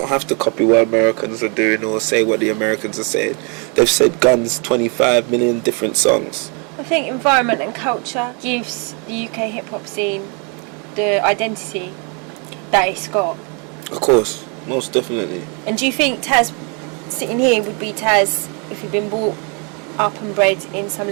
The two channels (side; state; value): left; quieter; 34.6 dB